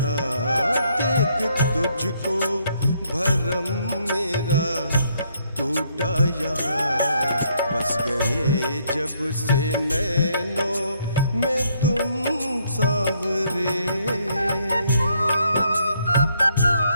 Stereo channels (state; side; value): inverted; both; correlation -0.71